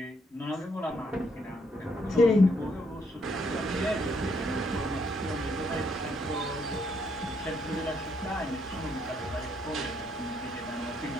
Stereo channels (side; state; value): both; normal; correlation 0.73